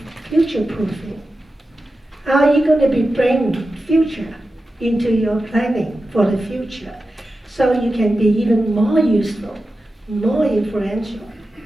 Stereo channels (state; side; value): normal; both; correlation 0.92